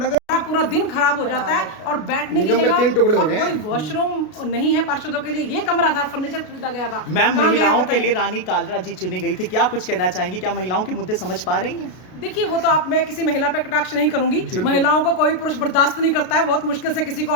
पूरा दिन खराब हो जाता है। और बैठने की जगह 3 टुकड़े हो गए हैं, वॉशरूम नहीं है पार्षदों के लिए, ये कमरा था, फर्नीचर खरीदा गया था। मैम महिलाओं के लिए रानी कालरा जी चुनी गई थी, क्या कुछ कहना चाहेंगी? क्या महिलाओं के मुद्दे समझ पा रही हैं? देखिए वो तो मैं किसी महिला पे कटाक्ष नहीं करूंगी, महिलाओं को कोई पुरुष बर्दाश्त नहीं करता है, बहुत मुश्किल से किसी को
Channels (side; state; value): right; late; 33 ms